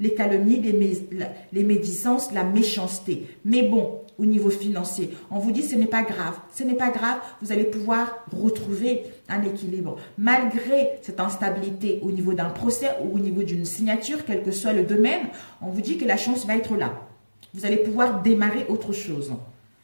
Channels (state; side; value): inverted; both; correlation -1.00